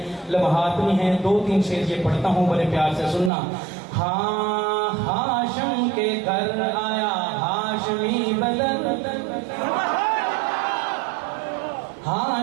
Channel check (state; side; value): drops out; left; at 3.3 s